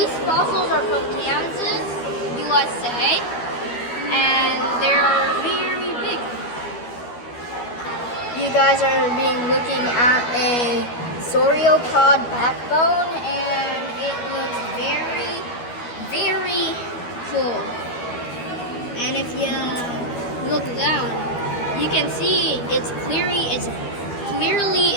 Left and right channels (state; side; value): late; right; 12 ms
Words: fossils are from Kansas, USA, and they're very big. You you guys are looking at a sauropod backbone, and it looks very, very cool. And if you look down, you can see it's clearly